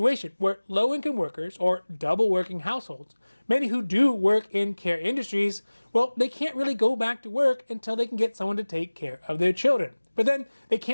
where low-income workers or double working households, many who do work in care industries, well, they can't really go back to work until they can get someone to take care of their children. But then they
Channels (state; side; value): inverted; both; correlation -1.00